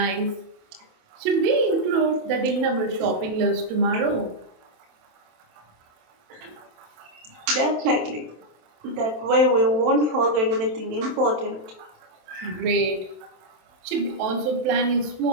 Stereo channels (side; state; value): left; late; 27 ms